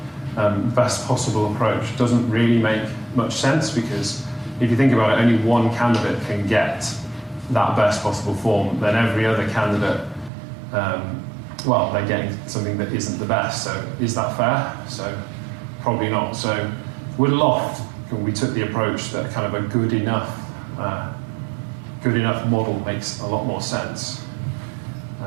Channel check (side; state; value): left; drops out; at 10.3 s